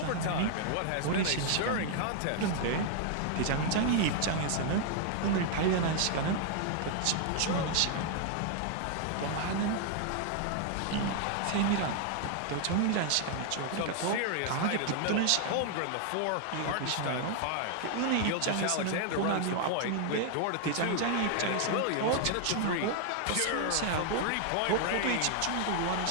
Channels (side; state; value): both; different; correlation 0.00